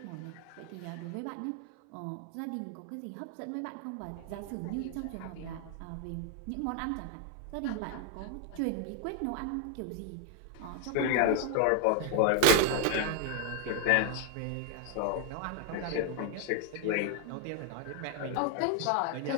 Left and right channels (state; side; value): different; both; correlation 0.00